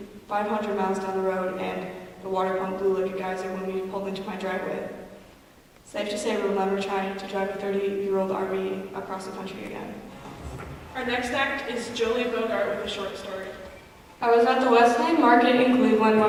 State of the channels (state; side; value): identical; both; correlation 1.00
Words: 500 miles down the road and the water pump blew like a geyser when we pulled into my driveway. Safe to say we'll never try to drive a 30-year-old RV across the country again. Our next act is Jolie Bogart with a short story. I was at the Wesleyan Market in Cleveland when